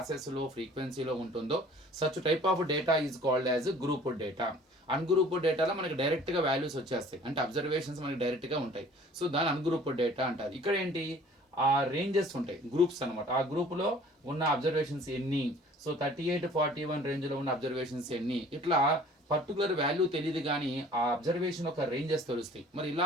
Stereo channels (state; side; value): normal; both; correlation 0.50